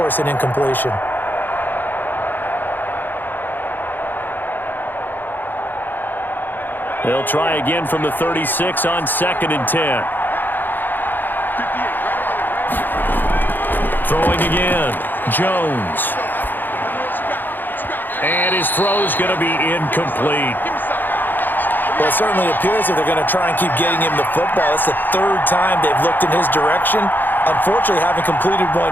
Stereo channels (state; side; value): late; right; 0.090 ms